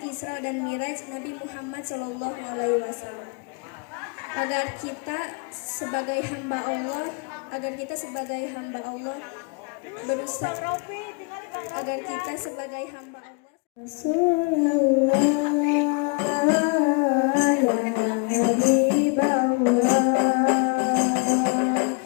Isra dan Mi'raj Nabi Muhammad Sallallahu Alaihi Wasallam. Agar kita sebagai hamba Allah berusaha agar kita sebagai hamba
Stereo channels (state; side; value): quieter; right; 31.5 dB